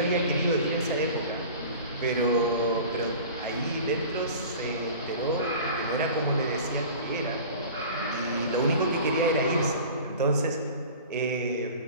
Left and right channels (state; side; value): inverted; both; correlation -0.39